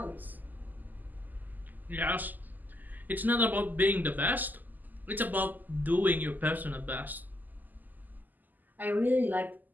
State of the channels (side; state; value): left; late; 0.085 ms